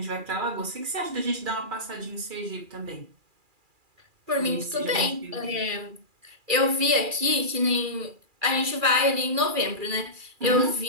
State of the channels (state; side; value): late; left; 2.4 ms